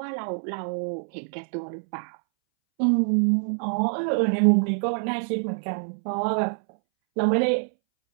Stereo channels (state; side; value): silent; left; 61 dB below the other